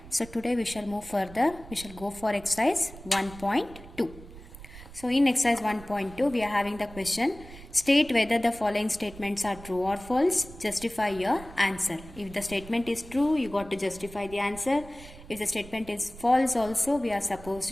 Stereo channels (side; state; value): right; noise; rumble, 17 dB below the sound